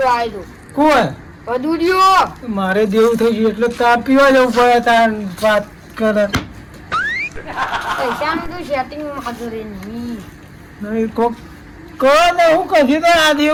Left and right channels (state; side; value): identical; both; correlation 1.00